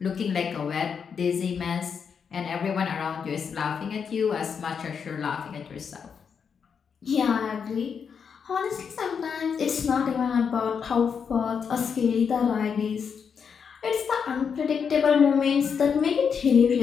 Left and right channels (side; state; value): right; quieter; 6.6 dB